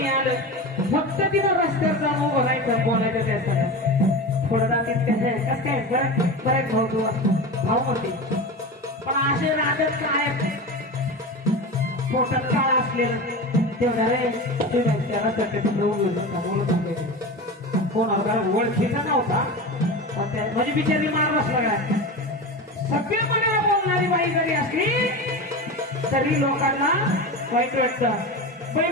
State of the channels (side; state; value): both; normal; correlation 0.26